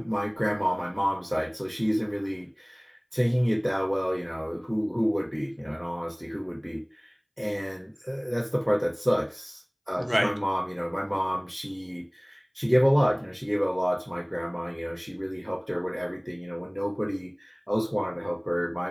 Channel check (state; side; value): identical; both; correlation 1.00